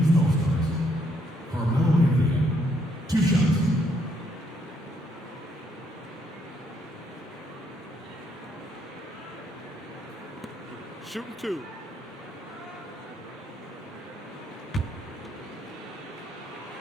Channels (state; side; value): normal; both; correlation 0.72